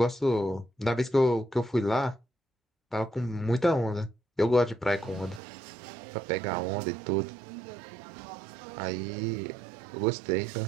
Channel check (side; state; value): left; drops out; at 5.4 s